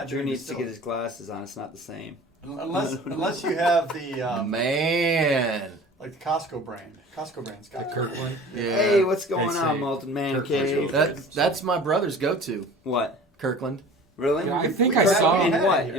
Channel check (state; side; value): normal; both; correlation 0.42